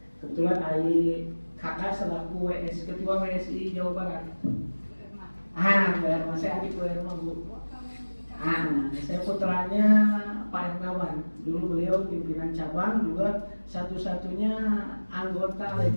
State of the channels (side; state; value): both; inverted; correlation -1.00